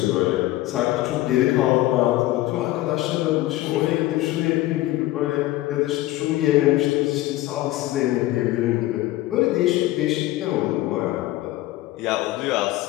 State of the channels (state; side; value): quieter; right; 16.6 dB